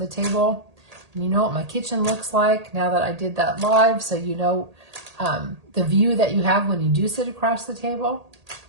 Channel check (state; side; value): late; left; 1.8 ms